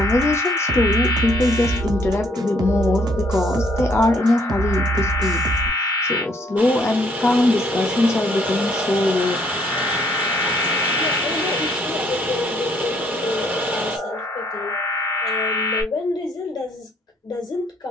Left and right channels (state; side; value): normal; both; correlation 0.67